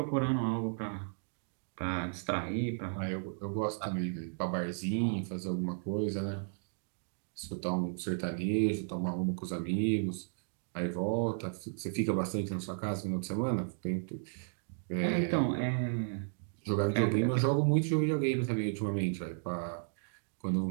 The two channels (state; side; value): silent; left; digital silence